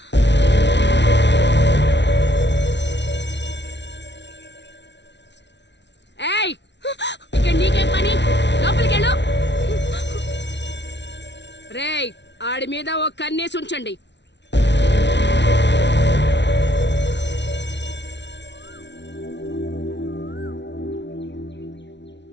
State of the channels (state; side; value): late; right; 0.51 ms